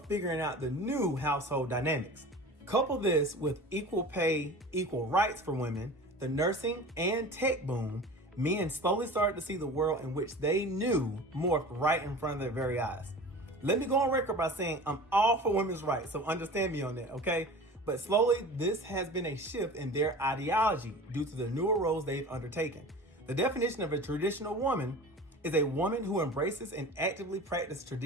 figuring out the new household dynamics. Couple this with equal pay, equal rights for women, the nursing and tech boom, men slowly started to see the world in which they knew morphed right in front of their very eyes. Let me go on record by saying I'm all for women's rights, so understand me on that, okay? But slowly, this has been a shift in their ideology due to the newer roles they've undertaken. The definition of a traditional woman is a woman who embraces and actively practices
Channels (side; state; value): both; normal; correlation 0.37